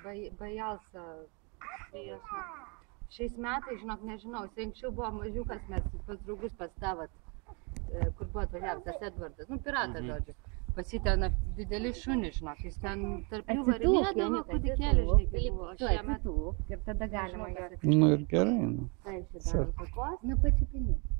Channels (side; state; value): left; quieter; 32.9 dB